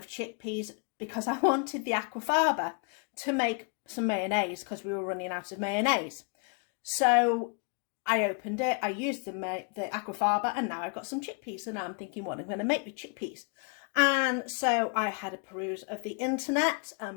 chickpeas because I wanted the aquafaba to make some mayonnaise because we were running out of mayonnaise. So I opened it, I used the aquafaba, and now I've got some chickpeas. So now I'm thinking, what I'm going to make with chickpeas. And so I had a peruse of the internet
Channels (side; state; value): right; quieter; 39.1 dB